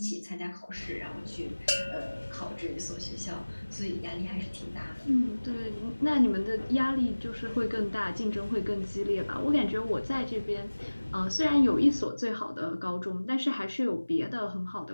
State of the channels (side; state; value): both; inverted; correlation -1.00